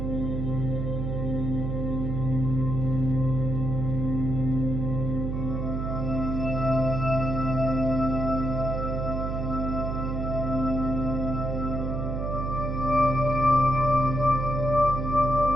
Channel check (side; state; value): right; noise; hum, 2 dB below the sound